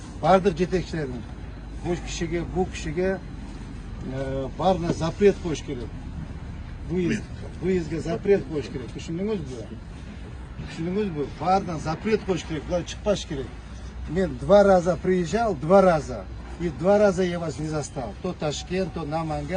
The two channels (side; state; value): both; identical; correlation 1.00